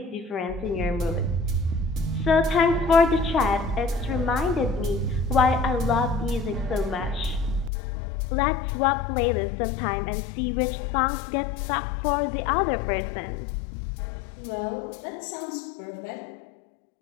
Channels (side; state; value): right; drops out; at 7.7 s